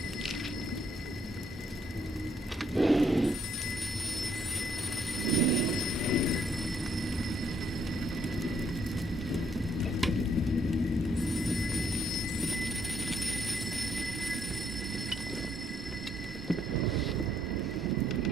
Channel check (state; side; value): normal; both; correlation 0.71